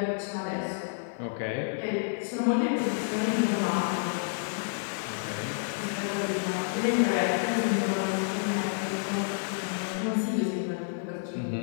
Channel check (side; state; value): right; silent; digital silence